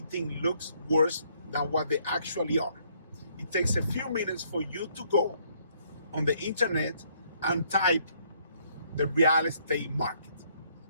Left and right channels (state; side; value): inverted; both; correlation -0.67